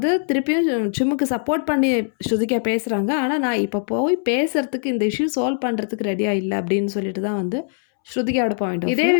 திருப்பியும் சும்முக்கு சப்போர்ட் பண்ணி ஸ்ருதிகா பேசுறாங்க. ஆனா நான் இப்ப போய் பேசுறதுக்கு இந்த இஷ்யூ சால்வ் பண்றதுக்கு ரெடியா இல்ல அப்படின்னு சொல்லிட்டு தான் வந்து ஸ்ருதிகாவோட பாயிண்ட் ஆஃப் இதே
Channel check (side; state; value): right; silent; 65 dB below the other